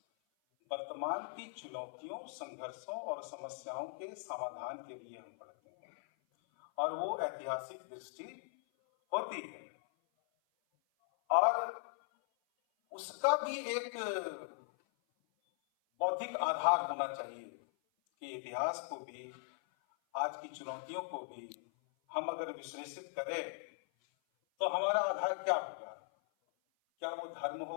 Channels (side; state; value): right; silent; 52 dB below the other